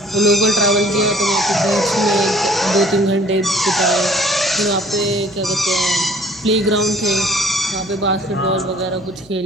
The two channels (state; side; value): noise; right; hum, 27 dB below the sound